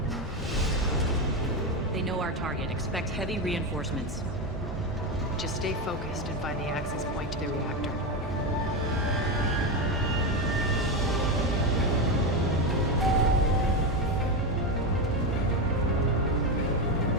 They know our target. Expect heavy reinforcements. Just stay focused and find the access point to the reactor.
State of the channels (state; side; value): normal; both; correlation 0.13